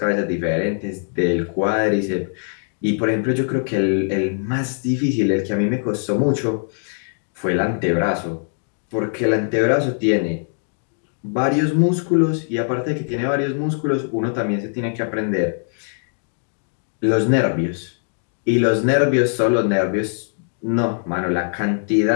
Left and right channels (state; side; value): silent; right; digital silence